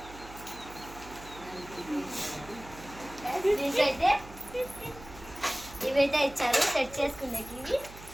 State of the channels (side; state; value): right; noise; hum, 17 dB below the sound